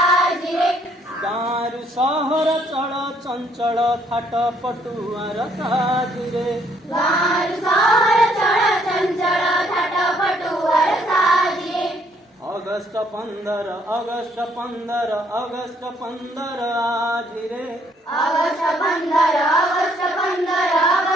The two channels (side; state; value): both; normal; correlation 0.67